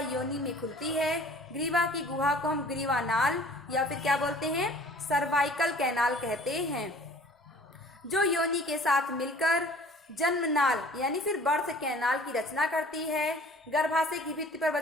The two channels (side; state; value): both; normal; correlation 0.49